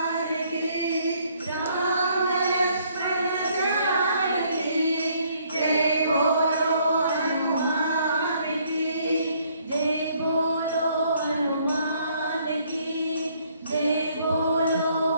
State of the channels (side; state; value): both; inverted; correlation -0.66